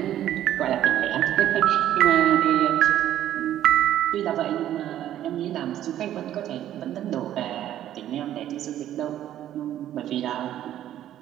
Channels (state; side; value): quieter; left; 11.9 dB